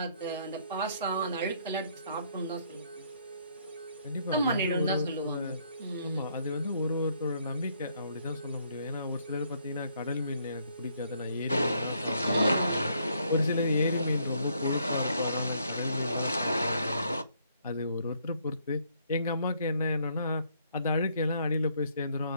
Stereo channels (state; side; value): inverted; both; correlation -0.69